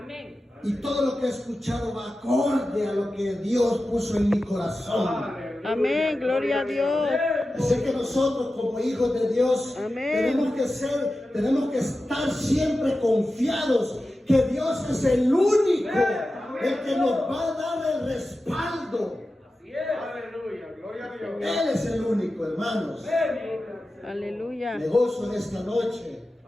Y todo lo que he escuchado va acorde a lo que Dios puso en mi corazón. Amén. Gloria a Dios. Así que nosotros como hijos de Dios Amén. tenemos que estar siempre confiados que Dios es el único, el que nos va a dar el respaldo. Aleluya. Gloria a Dios. Él es el único, hermanos. Aleluya. Me gozo en esta noche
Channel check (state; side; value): normal; both; correlation 0.93